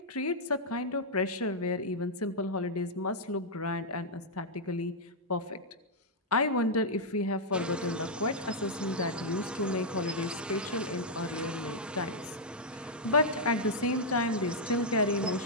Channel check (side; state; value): both; normal; correlation -0.06